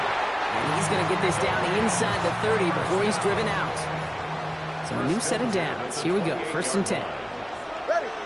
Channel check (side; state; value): both; identical; correlation 1.00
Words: And he's going to get this down inside the 30 before he's driven out. So a new set of downs. Here we go. 1st and 10. Ready.